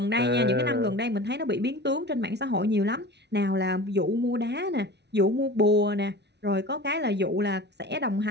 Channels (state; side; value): late; left; 0.50 ms